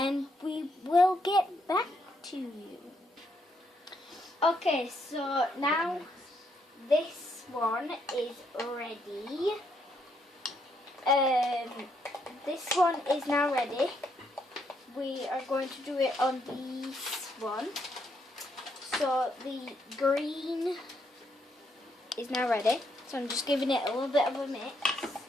we will get back to you. Okay, so now this one is ready. This one is now ready. We are going to do it on this one. So the green is now ready. So I'm just giving it a little bit of a mix.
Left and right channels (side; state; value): both; normal; correlation 0.75